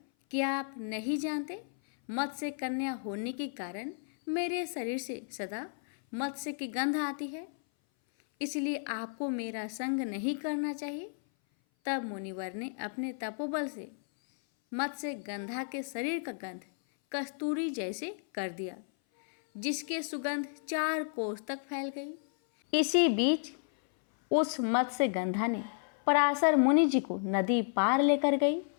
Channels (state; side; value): silent; right; 56 dB below the other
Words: क्या आप नहीं जानते, मत्स्य कन्या होने के कारण मेरे शरीर से सदा मत्स्य की गंध आती है, इसलिए आपको मेरा संग नहीं करना चाहिए। तब मुनिवर ने अपने तपोबल से मत्स्यगंधा के शरीर का गंध कस्तूरी जैसे कर दिया, जिसके सुगंध 4 कोस तक फैल गई। इसी बीच उस मत्स्यगंधा ने पराशर मुनि जी को नदी पार लेकर गई।